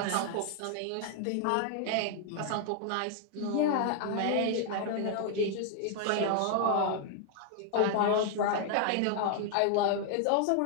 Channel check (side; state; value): both; different; correlation 0.00